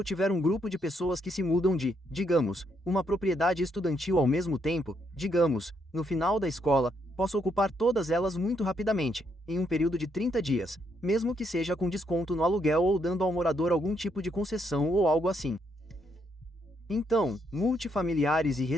tiver um grupo de pessoas que se mudam de, digamos, uma propriedade estudantil ao mesmo tempo, digamos, no final da escola, posso ocupar todas elas muito rapidamente, em um período de 30 dias, mesmo que seja com desconto no aluguel ou dando ao morador algum tipo de concessão ou algo assim. Então, multifamiliares e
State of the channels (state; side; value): normal; both; correlation 0.75